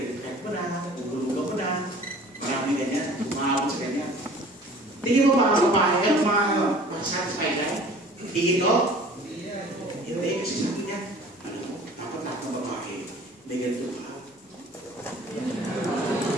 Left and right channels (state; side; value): normal; both; correlation 0.47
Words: credit card mo na, gugulugan mo na, marami ganyan, umahabot sa ganyan. Tingin mo mga babae, mga satisfied ka? Tingin ko? Hindi, kasi sabi niya, alam mo, dapat lahat ng babae, may ganito ka.